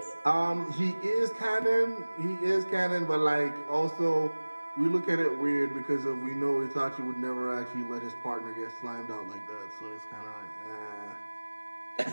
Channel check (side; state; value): both; inverted; correlation -1.00